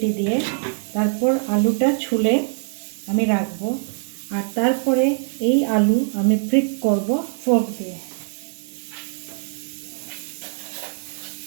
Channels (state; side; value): silent; left; 64 dB below the other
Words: দিয়ে। তারপর আলুটা ছুলে আমি রাখবো, আর তারপরে এই আলু আমি প্রিক করব ফোর্ক দিয়ে।